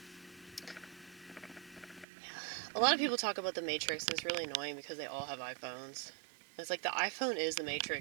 A lot of people talk about the Matrix, and it's really annoying because they all have iPhones. It's like the iPhone is the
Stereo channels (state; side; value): drops out; left; at 2.1 s